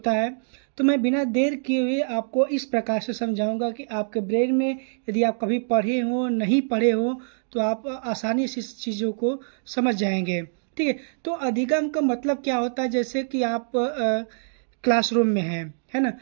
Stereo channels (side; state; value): left; silent; digital silence